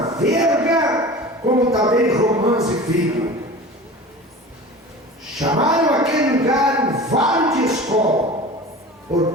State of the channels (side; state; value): both; normal; correlation 0.36